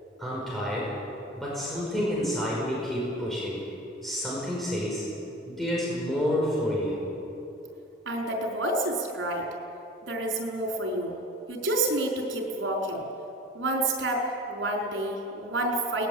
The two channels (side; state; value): both; normal; correlation 0.39